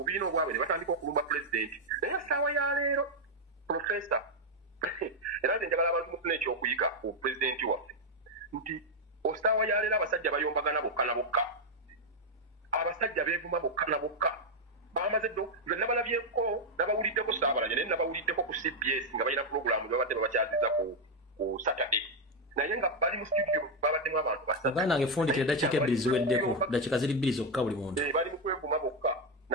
obwabwe ne batandika okulumba pulezidenti naye essaawa ya leero profesa era nze njagala abantu mufuna ekyokuyiga ku pulezidenti waffe nti essaawa ya leero abasajja bayombagana bokka na bokka abasajja beevuma bokka na bokka bamaze ddo nze nabalabyeko nabawuliddeko Saabalanya naye nabawuliddeko ku CBS nga balina pulogulaamu babadde babakyaziza ku Saturday naye nga bali mu studio babaddemu abantu basatu nange fundikira eddakiika ebbiri ziweddeko dakiika ziri bbiri zokka buli muntu bali mu kwevuma bokka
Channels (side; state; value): both; normal; correlation 0.03